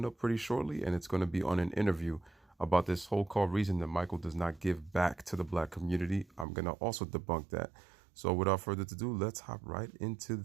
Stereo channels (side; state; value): left; drops out; at 6.5 s